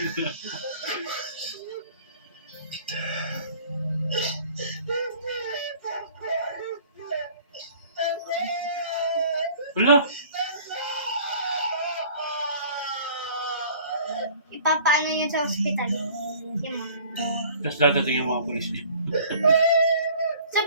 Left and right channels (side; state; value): both; inverted; correlation -0.50